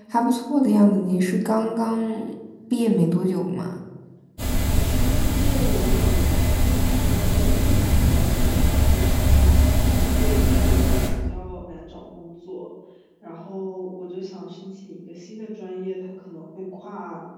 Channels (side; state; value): both; identical; correlation 1.00